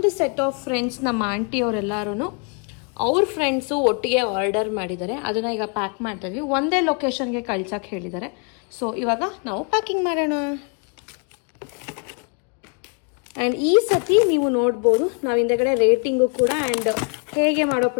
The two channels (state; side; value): quieter; right; 38.8 dB